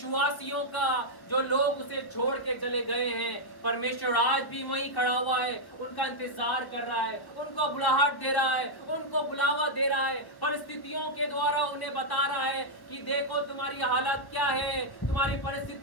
का, जो लोग उसे छोड़ के चले गए हैं। परमेश्वर आज भी वहीं खड़ा हुआ है, उनका इंतजार कर रहा है, उनको बुलाहट दे रहा है, उनको बुलावा दे रहा है। परिस्थितियों के द्वारा उन्हें बता रहा है कि देखो तुम्हारी हालत क्या है, तुम्हारी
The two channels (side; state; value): right; late; 1.2 ms